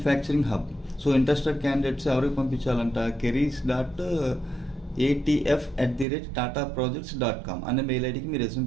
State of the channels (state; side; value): drops out; left; at 6.1 s